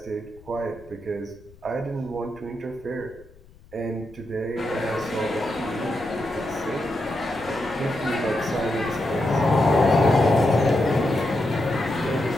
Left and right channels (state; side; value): noise; left; rumble, 25 dB below the sound